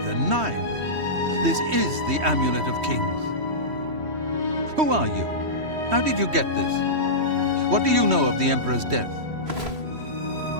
Nine! This is the Amulet of Kings. Who are you? How did you get this? What do you know of the Emperor's death?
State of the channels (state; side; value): late; left; 3.1 ms